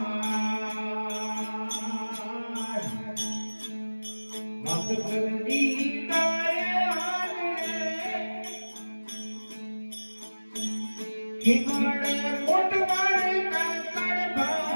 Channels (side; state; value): both; inverted; correlation -1.00